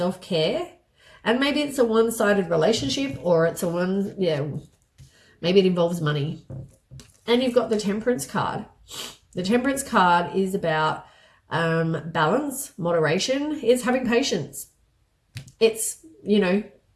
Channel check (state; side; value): identical; both; correlation 1.00